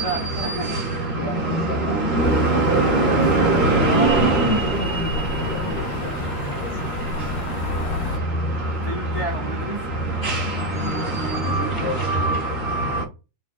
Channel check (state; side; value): late; right; 13 ms